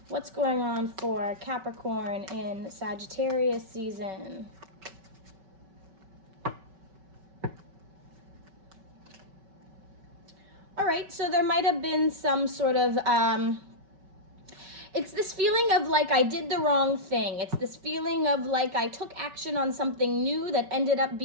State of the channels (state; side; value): late; left; 5.3 ms